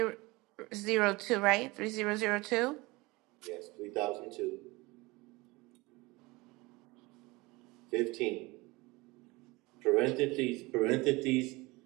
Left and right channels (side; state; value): left; quieter; 22.9 dB